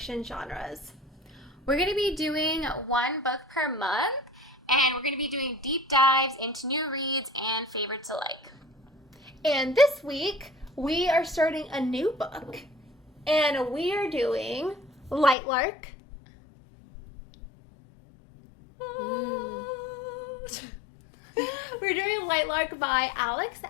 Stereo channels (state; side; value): drops out; right; at 15.4 s